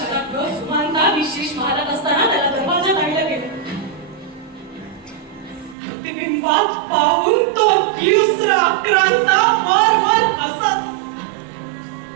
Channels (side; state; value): left; drops out; at 5.8 s